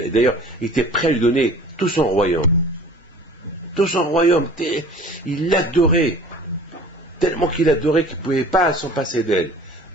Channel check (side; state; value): both; normal; correlation 0.45